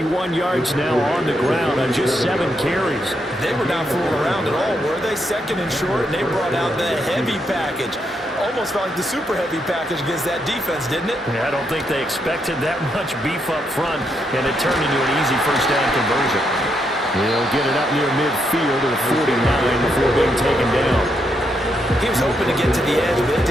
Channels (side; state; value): both; normal; correlation 0.79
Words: yards now on the ground on just 7 carries. They were not fooling around at all, were they? Second and short, and they brought out the heavy package. Almost felt like the super heavy package against that defense, didn't it? Yeah, I don't think they expected that much beef up front, and it turned into an easy first down conversion. He'll get it up near midfield to the 49 before being taken down. He was hoping to get to the edge, but they